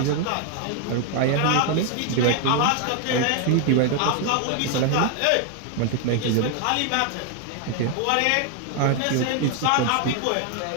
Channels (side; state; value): both; different; correlation 0.00